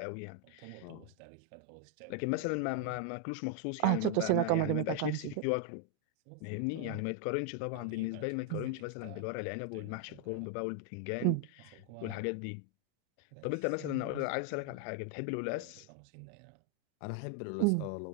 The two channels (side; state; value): both; different; correlation 0.00